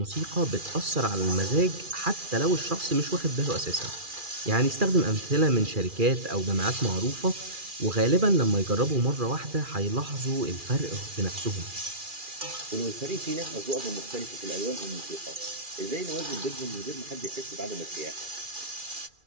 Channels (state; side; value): late; left; 2.4 ms